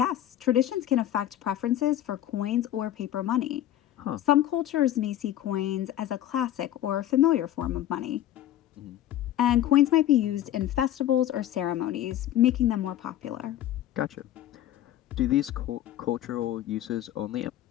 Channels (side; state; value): right; quieter; 12.5 dB